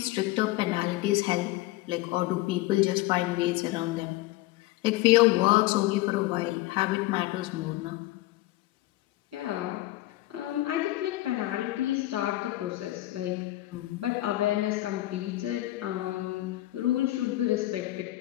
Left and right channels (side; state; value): right; quieter; 17.4 dB